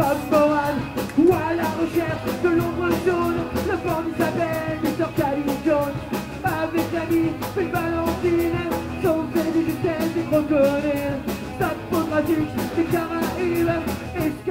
Moran. Ou à la recherche de l'ombre jaune, le bandit s'appelle Mr. Calvin Jones. Avec l'ami, une Valentine, sauvé de justesse et crocodile. Stade photographique des Caraïbes,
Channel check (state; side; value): identical; both; correlation 1.00